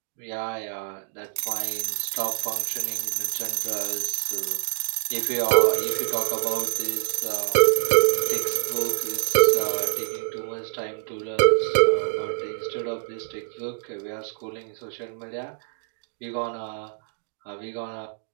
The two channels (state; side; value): silent; left; digital silence